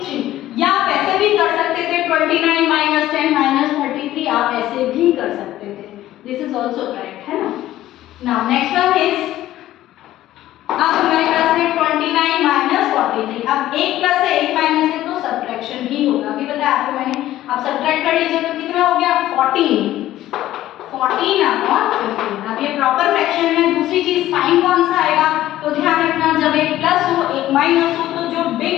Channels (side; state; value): right; quieter; 14.2 dB